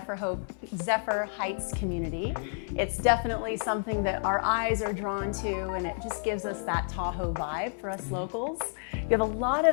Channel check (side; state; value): right; silent; digital silence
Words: Zephyr Heights community. It's definitely something that our eyes are drawn to, and it just gives us that Tahoe vibe for us locals. You have a lot